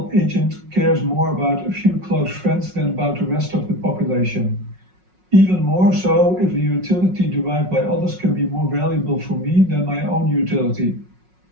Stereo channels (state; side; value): late; left; 5.4 ms